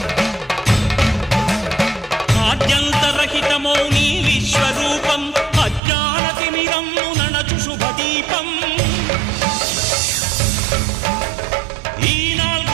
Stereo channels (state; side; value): drops out; left; at 5.8 s